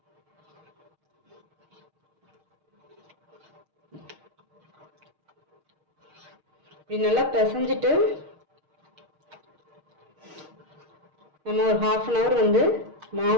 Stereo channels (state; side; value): late; left; 6.5 ms